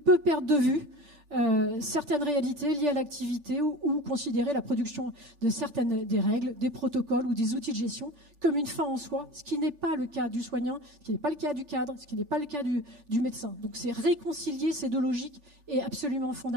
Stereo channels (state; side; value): late; left; 3.4 ms